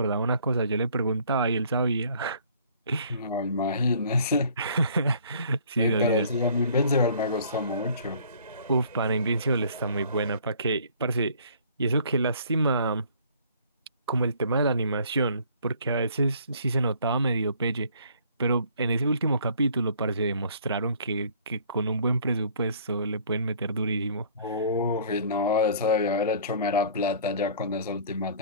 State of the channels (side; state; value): both; inverted; correlation -0.55